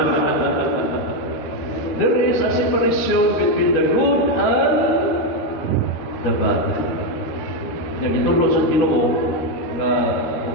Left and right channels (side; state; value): right; late; 12 ms